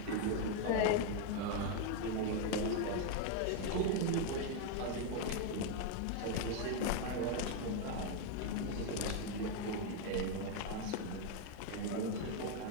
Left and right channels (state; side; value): different; both; correlation 0.01